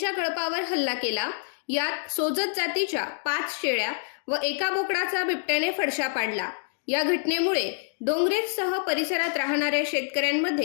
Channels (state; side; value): silent; right; digital silence